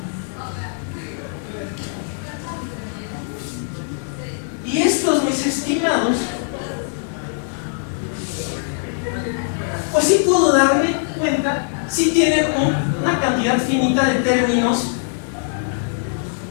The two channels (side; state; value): right; silent; digital silence